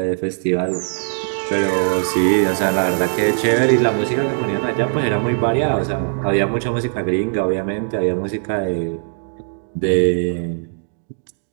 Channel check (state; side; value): silent; left; digital silence